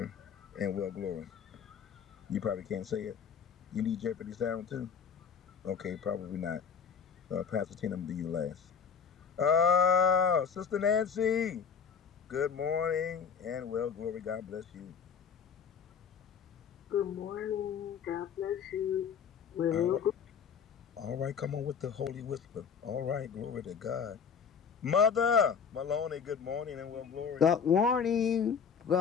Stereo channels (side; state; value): right; quieter; 6.7 dB